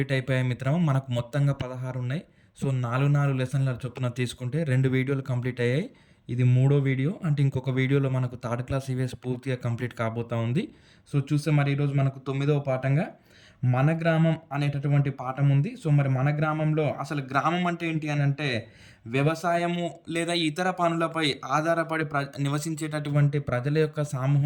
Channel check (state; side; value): identical; both; correlation 1.00